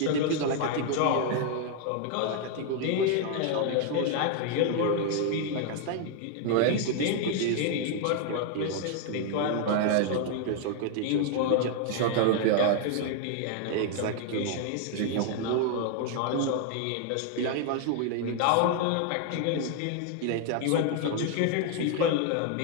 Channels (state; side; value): different; both; correlation 0.00